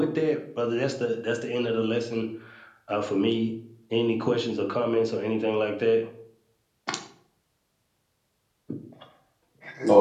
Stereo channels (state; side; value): identical; both; correlation 1.00